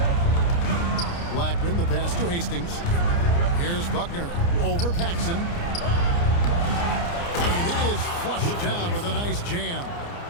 Blackman, the pass to Hastings. Here's Buckner over Paxson. And it is flushed down with a nice jam.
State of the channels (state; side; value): late; right; 29 ms